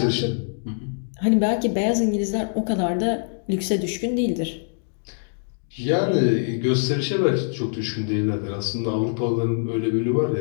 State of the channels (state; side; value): silent; right; digital silence